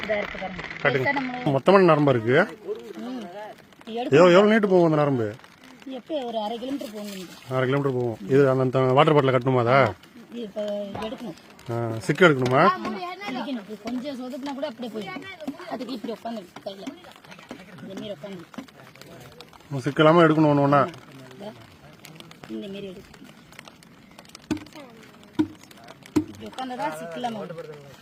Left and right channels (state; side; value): identical; both; correlation 1.00